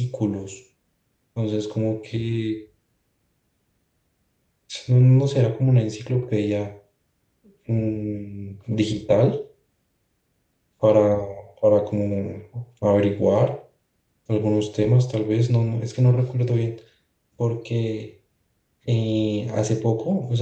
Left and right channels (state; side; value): identical; both; correlation 1.00